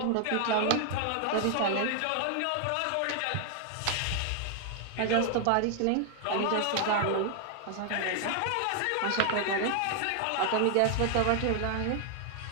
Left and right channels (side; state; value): both; different; correlation 0.00